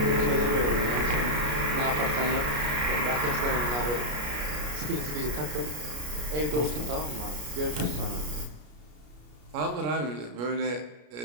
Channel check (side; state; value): left; late; 33 ms